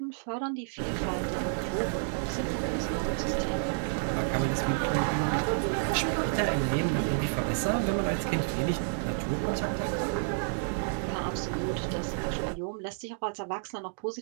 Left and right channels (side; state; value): left; silent; digital silence